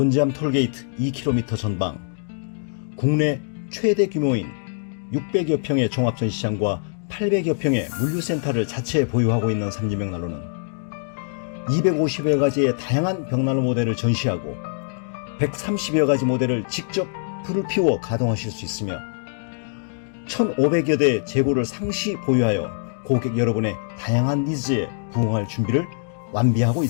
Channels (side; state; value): right; silent; digital silence